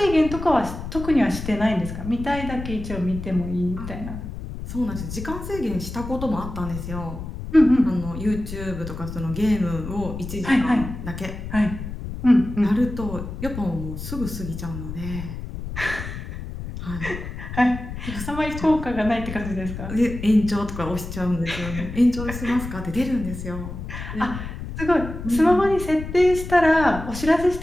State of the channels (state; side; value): noise; left; rumble, 8 dB below the sound